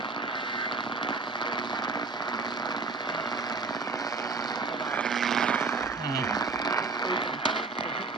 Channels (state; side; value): quieter; left; 4.1 dB